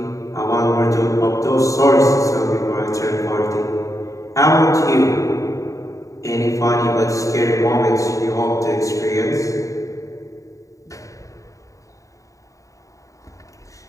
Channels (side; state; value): right; late; 0.16 ms